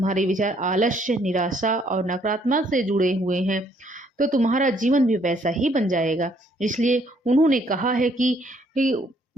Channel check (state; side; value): normal; both; correlation 0.67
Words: विचार आलस्य, निराशा और नकारात्मक से जुड़े हुए हैं, तो तुम्हारा जीवन भी वैसा ही बन जाएगा। इसलिए उन्होंने कहा है कि